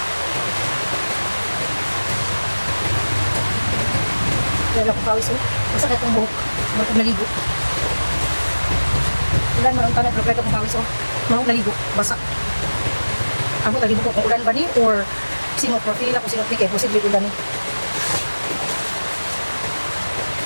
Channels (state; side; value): inverted; both; correlation -1.00